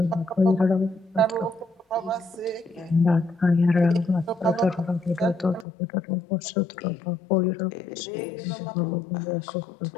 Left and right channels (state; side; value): drops out; right; at 5.7 s